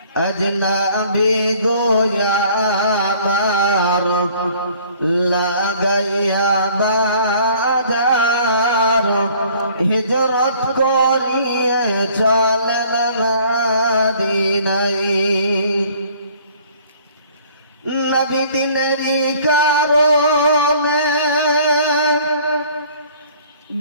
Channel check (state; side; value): inverted; both; correlation -0.55